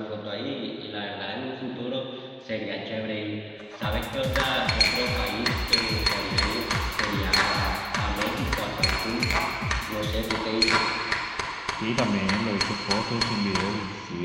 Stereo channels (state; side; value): identical; both; correlation 1.00